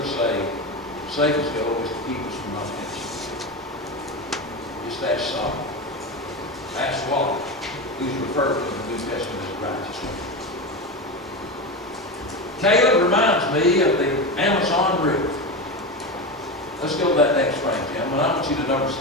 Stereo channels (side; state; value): both; normal; correlation 0.20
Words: saved, Satan's goal is to keep us from offense. Just ask Solomon. Ask Wally, who's referred to in the New Testament as righteous one. Caleb reminds me of the Amazon River. Let's go to that next frame, gentlemen. I want you to notice,